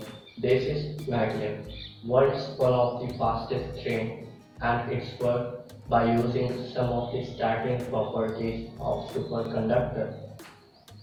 this is Magnet. World's one of the fastest train and it's worked by using some of the starting properties of superconductor.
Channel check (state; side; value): identical; both; correlation 1.00